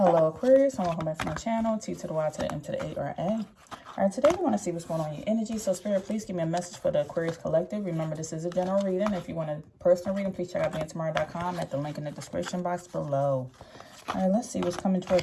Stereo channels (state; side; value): identical; both; correlation 1.00